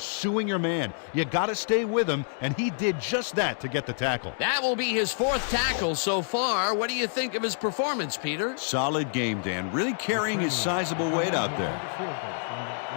your man. You got to stay with him, and he did just that to get the tackle. That will be his 4th tackle so far. What do you think of his performance, Peter? Solid game, Dan. Really carrying his sizable weight out there. Field goal from the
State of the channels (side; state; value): right; silent; digital silence